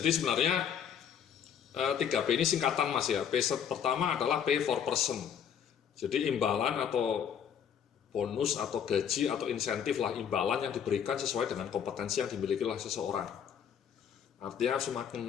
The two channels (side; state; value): right; quieter; 8.3 dB